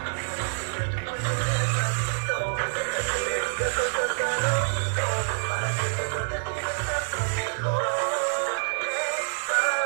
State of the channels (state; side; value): silent; left; 56 dB below the other